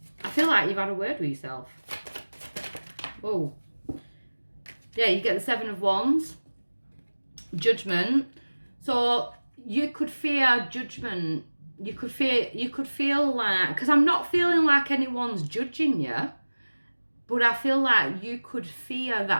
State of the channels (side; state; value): both; inverted; correlation -1.00